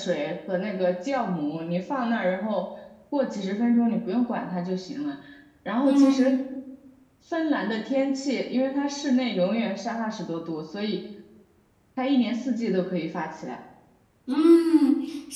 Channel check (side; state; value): both; identical; correlation 1.00